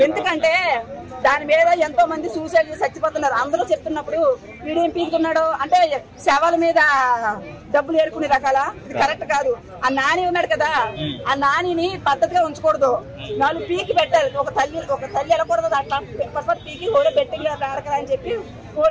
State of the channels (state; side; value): identical; both; correlation 1.00